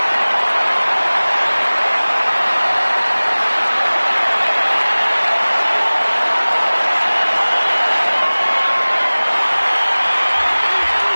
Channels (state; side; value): inverted; both; correlation -1.00